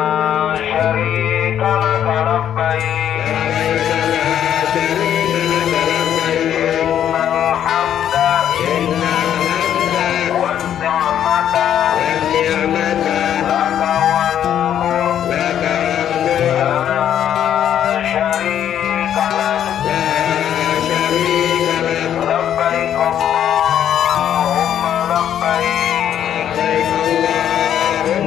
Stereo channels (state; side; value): quieter; right; 10.1 dB